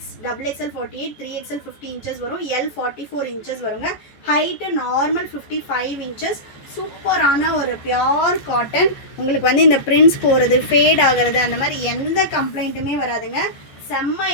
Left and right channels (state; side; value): late; right; 14 ms